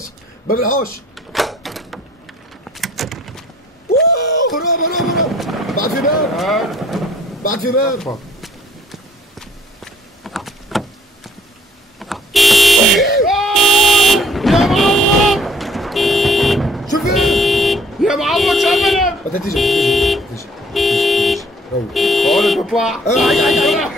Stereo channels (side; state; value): both; normal; correlation 0.59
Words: باب الحوش. هرب. بعد في باب. يا معوض شوف يا معوض شو عملت؟ بدها تيجي روح. بقول تطلع.